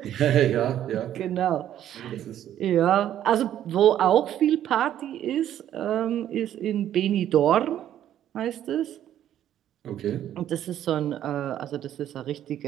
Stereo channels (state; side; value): quieter; left; 11.3 dB